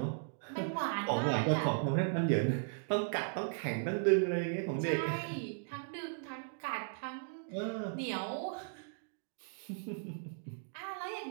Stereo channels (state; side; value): silent; left; digital silence